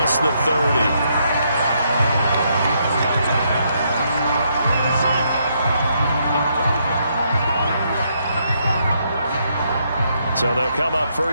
the 30. So they'll come up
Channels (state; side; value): inverted; both; correlation -0.75